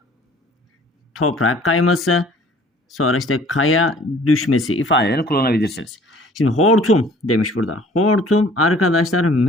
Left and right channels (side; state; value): both; normal; correlation 0.53